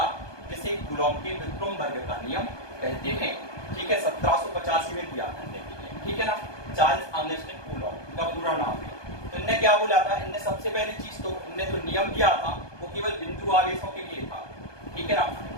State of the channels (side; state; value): right; late; 1.2 ms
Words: जिसे कूलॉम के विल्ट्रॉन वर्ग का नियम कहते हैं, ठीक है। 1785 में दिया करने के लिए, ठीक है ना, चार्ल्स आंगस्टाइन कूलॉम का पूरा नाम है। तो इनने क्या बोला था, इनने सबसे पहली चीज तो इनने जो नियम दिया था वो केवल बिंदु आवेशों के लिए था, ठीक है ना।